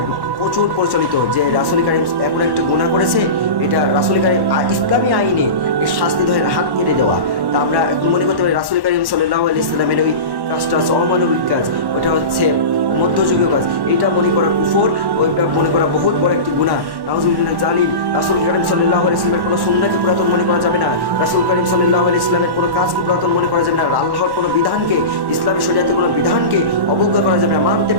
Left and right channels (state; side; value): late; left; 1.1 ms